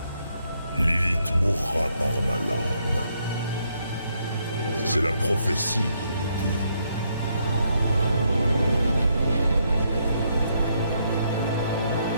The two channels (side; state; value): both; inverted; correlation -0.75